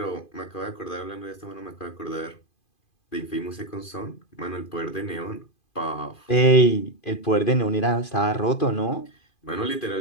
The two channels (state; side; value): late; right; 2.5 ms